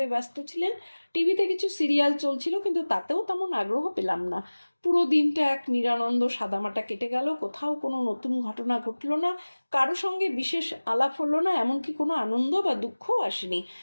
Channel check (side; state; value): both; inverted; correlation -1.00